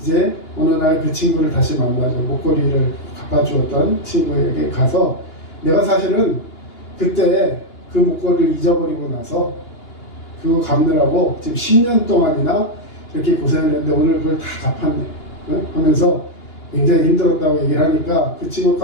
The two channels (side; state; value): right; late; 2.8 ms